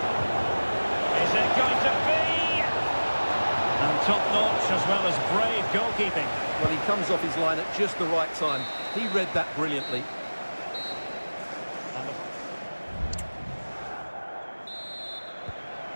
Top-notch as well as brave goalkeeping. Well, he comes off his line at just the right time. He read that brilliantly.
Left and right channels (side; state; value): both; inverted; correlation -1.00